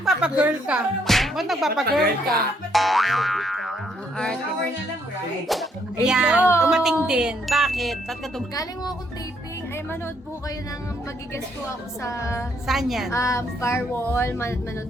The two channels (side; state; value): both; normal; correlation 0.71